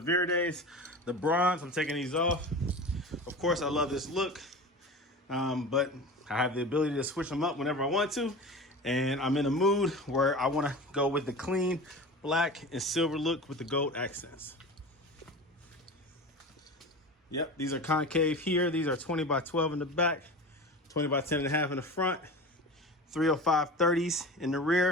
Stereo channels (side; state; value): both; normal; correlation 0.32